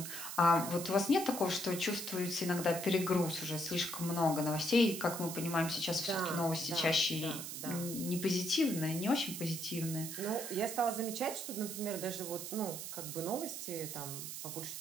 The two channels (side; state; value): right; noise; hiss, 7 dB below the sound